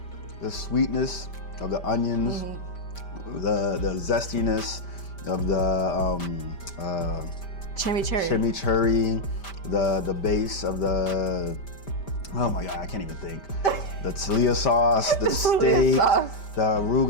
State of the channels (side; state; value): right; late; 5.1 ms